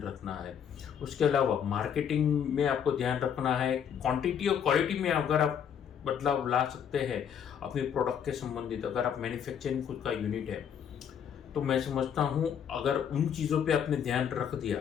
रखना है। उसके अलावा मार्केटिंग में आपको ध्यान रखना है। क्वांटिटी और क्वालिटी में अगर आप बदलाव ला सकते हैं अपने प्रोडक्ट के संबंधित, अगर आप मैन्युफैक्चरिंग खुद का यूनिट है तो मैं समझता हूँ अगर उन चीज़ों पे आपने ध्यान रख दिया,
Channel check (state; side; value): quieter; right; 8.3 dB